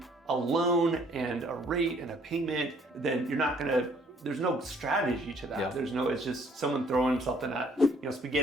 a loan and a rate and a payment, then you're not going to, there's no strategy to that. There's no, it's just someone throwing something at,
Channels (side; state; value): both; normal; correlation 0.61